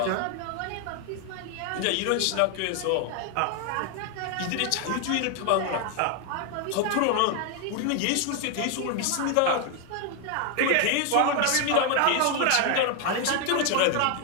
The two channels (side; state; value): both; different; correlation 0.00